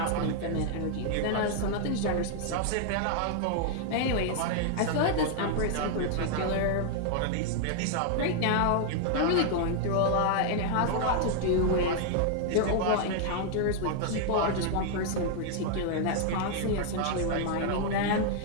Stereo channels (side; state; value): both; different; correlation 0.00